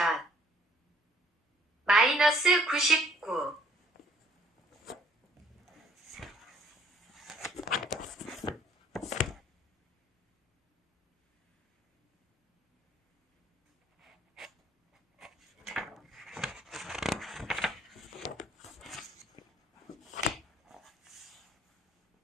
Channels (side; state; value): both; normal; correlation 0.60